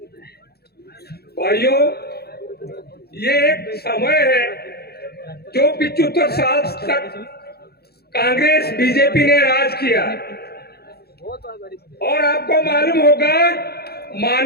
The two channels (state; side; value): late; right; 0.46 ms